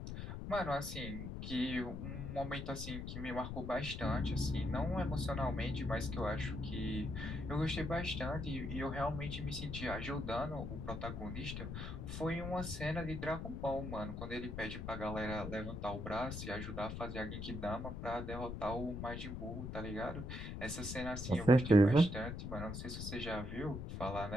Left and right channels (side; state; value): left; noise; rumble, 6 dB below the sound